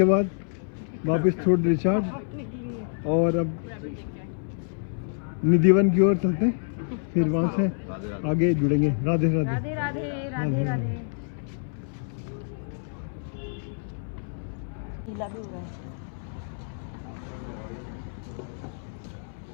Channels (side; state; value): right; silent; 60 dB below the other